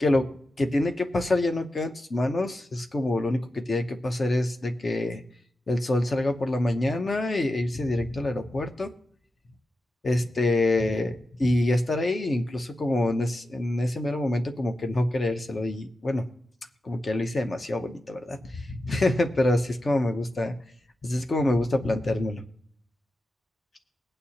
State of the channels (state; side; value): normal; both; correlation 0.91